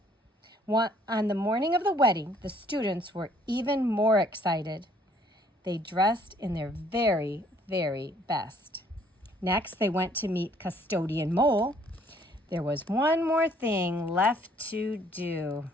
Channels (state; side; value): normal; both; correlation 0.62